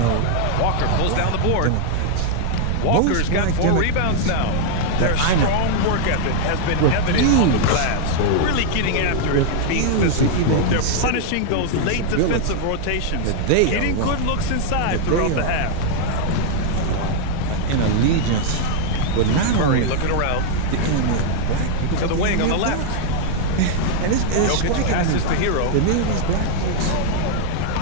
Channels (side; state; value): both; different; correlation 0.00